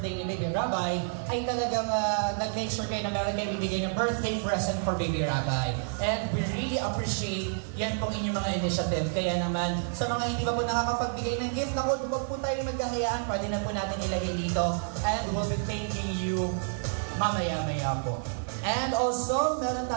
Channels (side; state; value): left; silent; digital silence